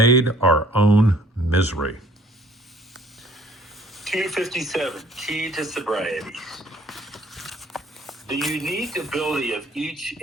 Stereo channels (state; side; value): normal; both; correlation 0.57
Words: our own misery. 257, Key to Sobriety. The unique ability of each